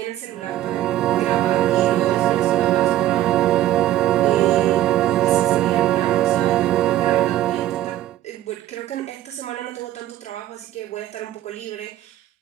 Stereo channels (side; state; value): left; quieter; 13.5 dB